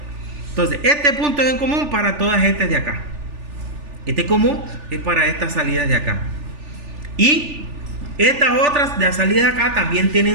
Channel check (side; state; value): left; late; 3.4 ms